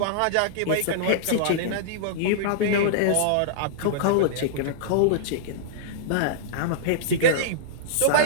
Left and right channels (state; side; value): different; both; correlation -0.02